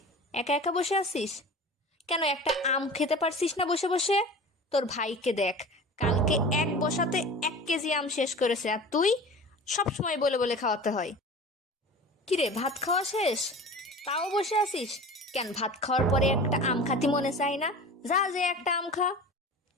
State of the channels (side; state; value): both; normal; correlation 0.37